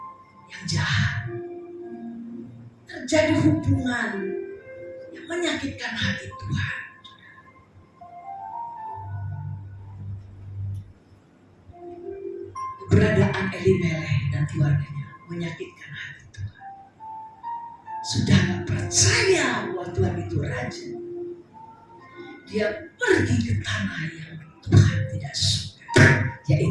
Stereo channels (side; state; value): both; identical; correlation 1.00